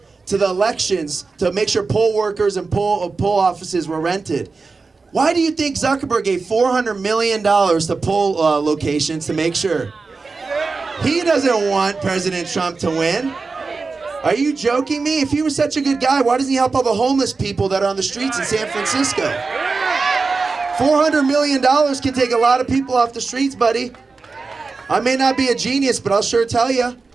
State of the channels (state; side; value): quieter; left; 4.3 dB